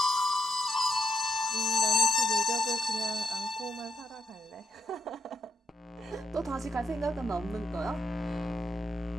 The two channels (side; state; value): both; normal; correlation 0.78